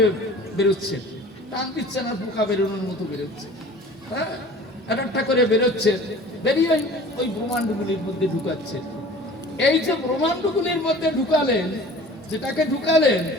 বেরোচ্ছে, টান দিচ্ছে না, পোকা বেরোনোর মতো বেরোচ্ছে। হ্যাঁ, একটা করে বেরোচ্ছে, বেরিয়ে ওই ব্রহ্মাণ্ডগুলির মধ্যে ঢুকাচ্ছে। এই যে ব্রহ্মাণ্ডগুলির মধ্যে ঢুকালেন, যেটাকে ঢুকালেন,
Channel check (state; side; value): normal; both; correlation 0.44